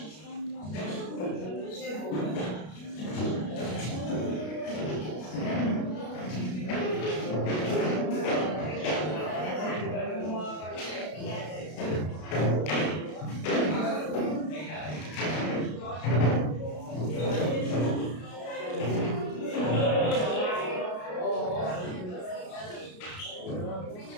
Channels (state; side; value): late; right; 33 ms